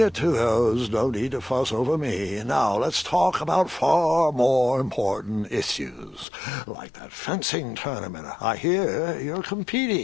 to those. No need to fuss over me. Now let's talk about far more important issues, like that fencing tournament. I hear you're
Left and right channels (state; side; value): drops out; right; at 6.2 s